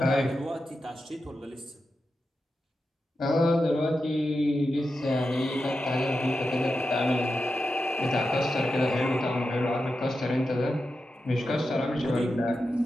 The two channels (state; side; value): normal; both; correlation 0.89